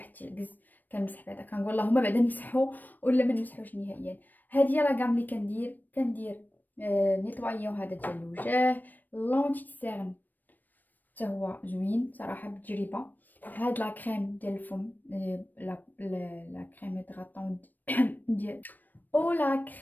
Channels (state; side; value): late; right; 0.088 ms